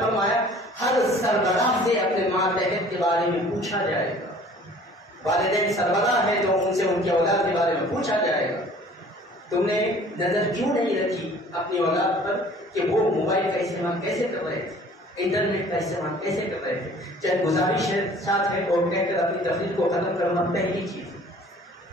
فرمایا ہر سربراہ سے اپنے ماتحت کے بارے میں پوچھا جائے گا۔ والدین سربراہ ہے تو ان سے ان کی اولاد کے بارے میں پوچھا جائے گا۔ تم نے نظر کیوں نہیں رکھی اپنی اولاد پر کہ وہ موبائل کا استعمال کیسے کر رہے تھے، انٹرنیٹ کا استعمال کیسے کر رہے تھے؟ چاہے گزارش ساتھ ہے اور کہہ کر اپنی تفریح کو ختم کرنا پہلی چیز۔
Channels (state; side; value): normal; both; correlation 0.50